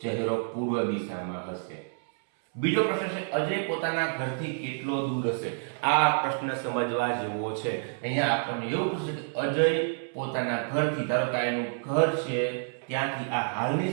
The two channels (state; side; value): silent; left; 59 dB below the other